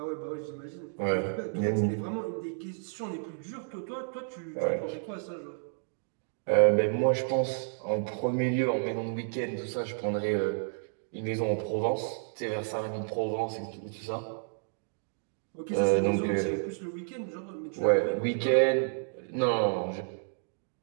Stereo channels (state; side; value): silent; left; digital silence